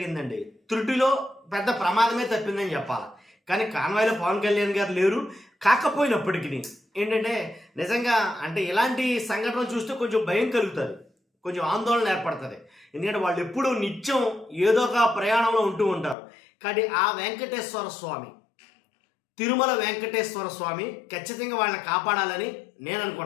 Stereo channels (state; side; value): drops out; right; at 16.2 s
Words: త్రుటిలో పెద్ద ప్రమాదమే తప్పిందని చెప్పాలి. కానీ కాన్వాయ్లో పవన్ కళ్యాణ్ గారు లేరు. కాకపోయినప్పటికీ ఏంటంటే నిజంగా అంటే ఇలాంటి సంఘటనలు చూస్తే కొంచెం భయం కలుగుతుంది, కొంచెం ఆందోళన ఏర్పడుతుంది. ఎందుకంటే వాళ్ళు ఎప్పుడూ నిత్యం ఏదో ఒక ప్రయాణంలో ఉంటూ ఉంటారు. కానీ ఆ వెంకటేశ్వర స్వామి, తిరుమల వెంకటేశ్వర స్వామి ఖచ్చితంగా వాళ్ళని కాపాడాలని నేను